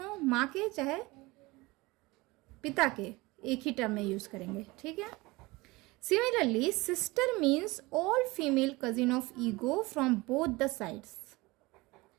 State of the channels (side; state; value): left; quieter; 22.3 dB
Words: माँ के चाहे पिता के, एक ही टर्म में यूज़ करेंगे, ठीक है। Similarly sister means all female cousin of ego from both the sides,